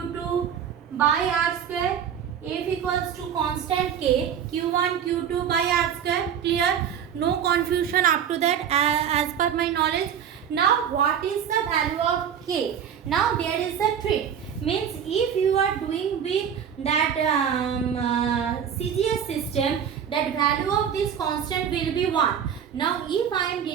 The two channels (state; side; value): quieter; left; 8.4 dB